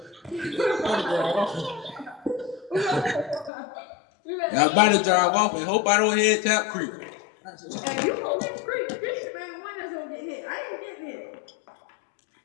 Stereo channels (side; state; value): right; drops out; at 3.5 s